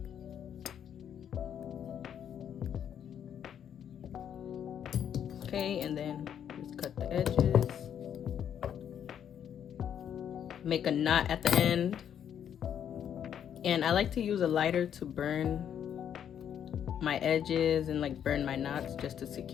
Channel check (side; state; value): right; quieter; 9.1 dB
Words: Okay, and then just cut the edges. Make a knot at the end. And I like to use a lighter to burn my edges and like burn my knots just to